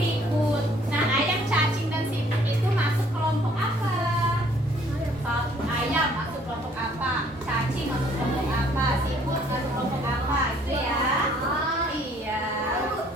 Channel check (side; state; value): both; normal; correlation 0.61